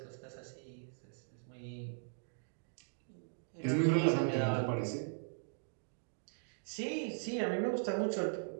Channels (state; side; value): silent; left; digital silence